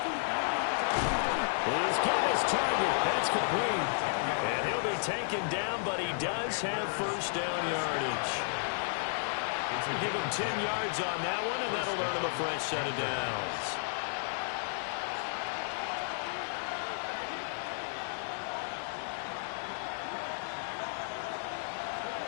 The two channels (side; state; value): right; silent; digital silence